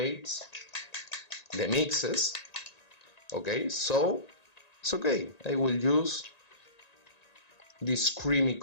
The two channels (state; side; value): late; right; 1.9 ms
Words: the mixes. Okay, so it's okay, I will use this creamy